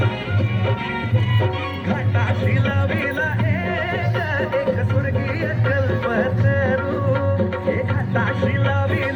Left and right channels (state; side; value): identical; both; correlation 1.00